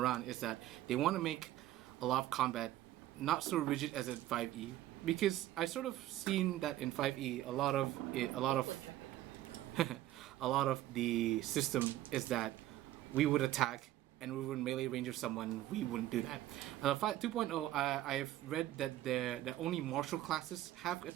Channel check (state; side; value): quieter; left; 14.3 dB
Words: is that they want to make a lot of combat not so rigid as in 5e, because I sort of seen that in 5e a lot of a lot of the system is that we would attack and we would melee range of someone. We wouldn't do that. 2.0, I've read that that only martial classes have